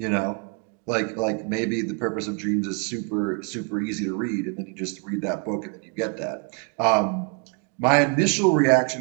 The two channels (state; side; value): quieter; left; 37.3 dB